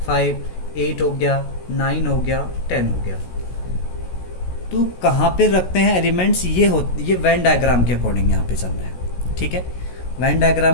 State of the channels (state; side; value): late; right; 16 ms